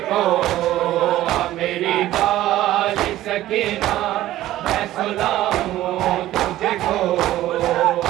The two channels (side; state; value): left; quieter; 14.6 dB